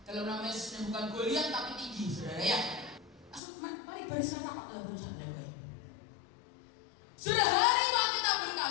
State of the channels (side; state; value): right; drops out; at 3.4 s